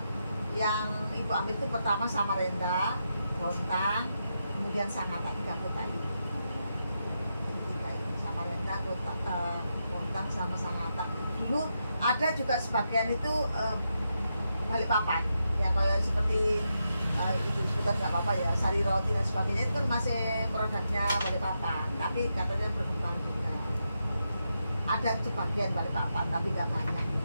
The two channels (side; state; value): both; inverted; correlation -0.85